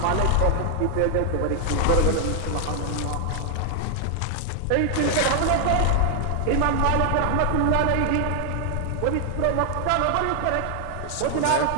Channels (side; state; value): both; different; correlation 0.00